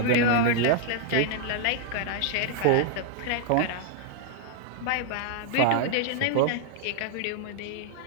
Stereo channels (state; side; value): different; both; correlation 0.00